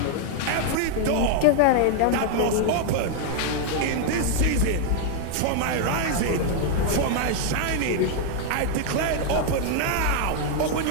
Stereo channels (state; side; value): different; both; correlation 0.00